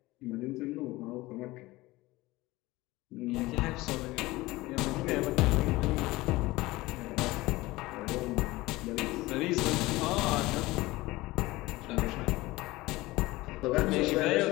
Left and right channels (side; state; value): right; quieter; 19.7 dB